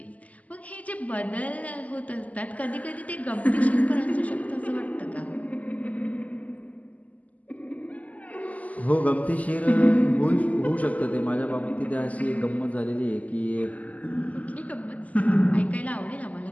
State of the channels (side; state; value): right; late; 0.074 ms